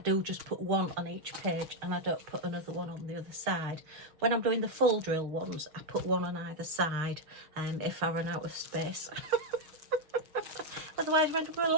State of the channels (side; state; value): left; late; 6.8 ms